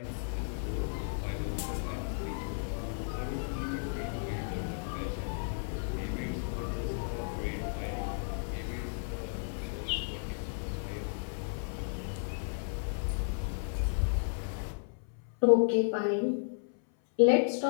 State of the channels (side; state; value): right; silent; 55 dB below the other